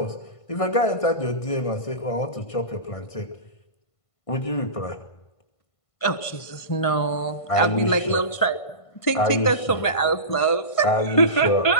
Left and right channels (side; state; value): right; late; 1.5 ms